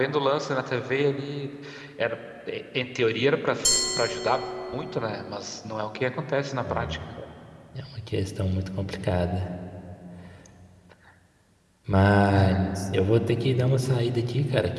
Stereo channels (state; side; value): identical; both; correlation 1.00